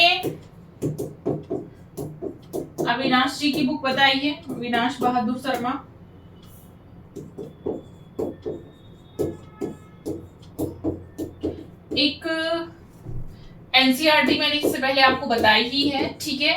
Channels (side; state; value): both; identical; correlation 1.00